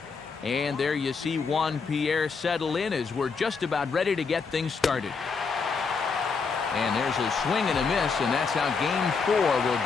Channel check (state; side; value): quieter; right; 5.1 dB